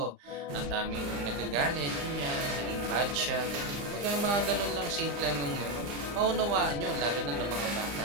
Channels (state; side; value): late; left; 34 ms